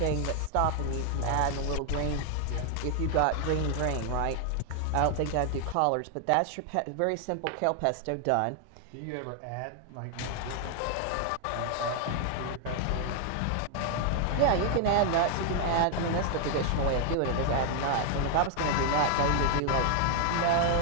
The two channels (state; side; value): different; both; correlation 0.00